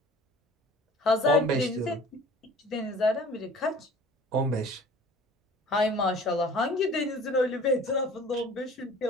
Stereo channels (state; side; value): normal; both; correlation 0.47